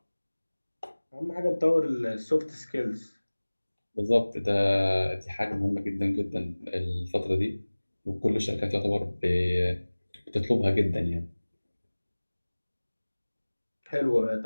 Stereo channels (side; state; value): both; inverted; correlation -1.00